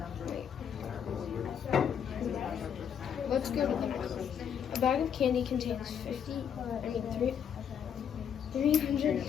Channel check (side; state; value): right; quieter; 8.2 dB